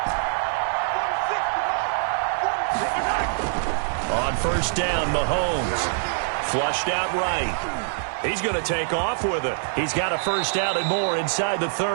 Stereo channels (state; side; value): silent; left; 56 dB below the other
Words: On first down, Mahomes. Flushed out right. He's going to take off with it. He's got a first down and more inside the